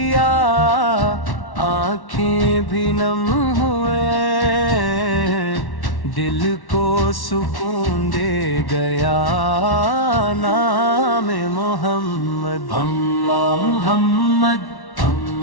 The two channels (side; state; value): right; late; 1.1 ms